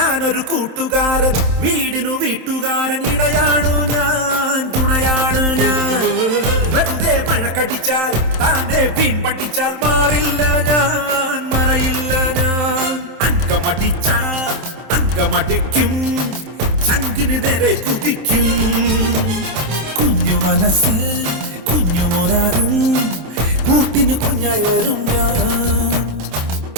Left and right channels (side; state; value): left; late; 27 ms